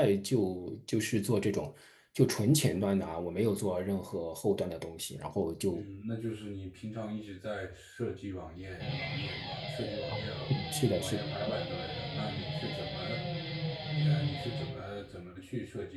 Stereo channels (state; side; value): identical; both; correlation 1.00